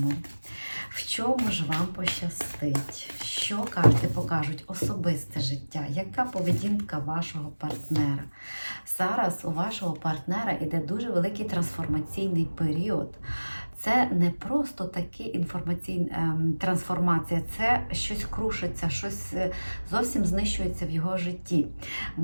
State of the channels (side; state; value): both; inverted; correlation -1.00